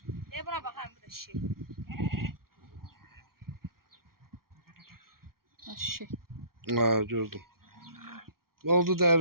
Buna bakayım bu da şey. Şey. Ha, gördüm. Oldu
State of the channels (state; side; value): late; left; 0.93 ms